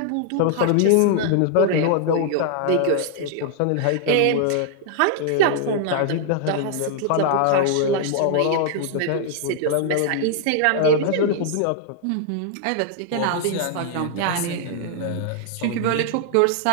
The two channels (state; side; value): different; both; correlation 0.00